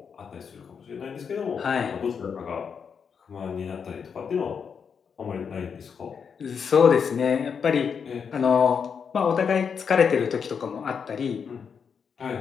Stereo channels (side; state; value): right; quieter; 6.5 dB